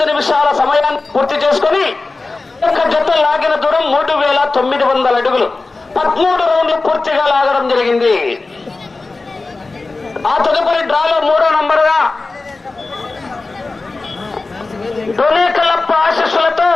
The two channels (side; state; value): right; quieter; 3.6 dB